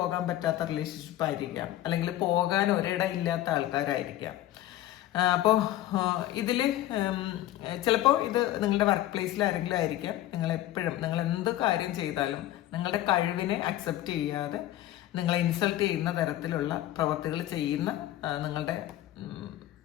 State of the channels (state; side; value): quieter; right; 14.2 dB